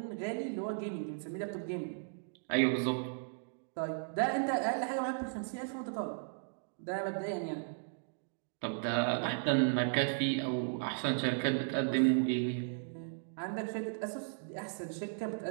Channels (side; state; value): left; silent; digital silence